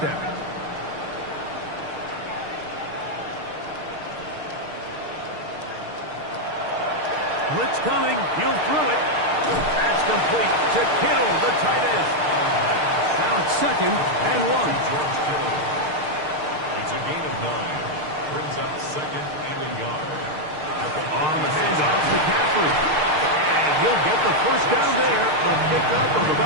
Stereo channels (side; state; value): left; late; 6.6 ms